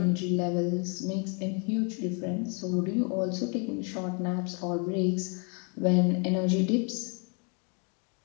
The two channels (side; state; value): right; quieter; 36.2 dB